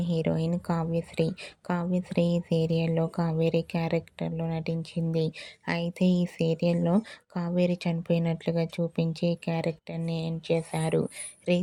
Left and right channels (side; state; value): both; identical; correlation 1.00